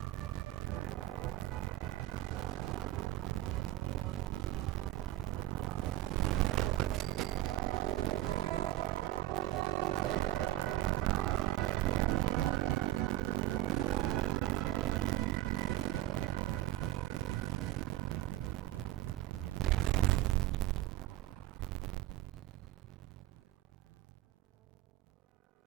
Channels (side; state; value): left; quieter; 14.9 dB